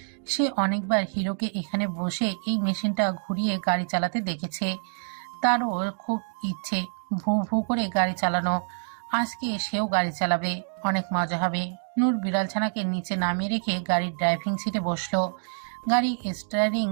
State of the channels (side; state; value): left; silent; digital silence